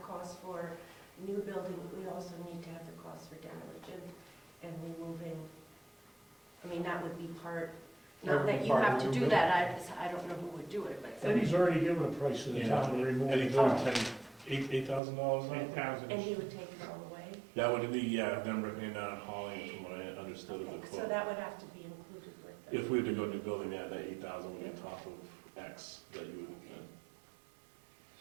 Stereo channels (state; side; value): drops out; left; at 15.0 s